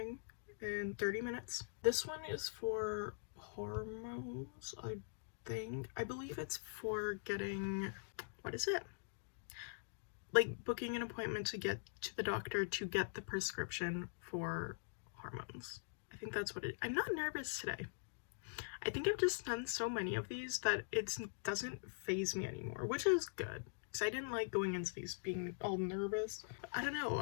in 30 minutes. This one is for hormones, I think. I believe it's for getting, what is it? Like booking an appointment to get to the doctor to get the prescription for hormones. I think that's what it is. I'm not nervous today. I think I've just done so many of these that it doesn't faze me anymore, which is good. Because I didn't like going into these being all nervous. I don't know,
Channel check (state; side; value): silent; right; digital silence